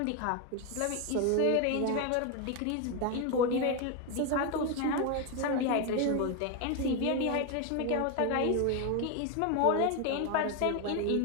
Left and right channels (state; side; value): different; both; correlation 0.01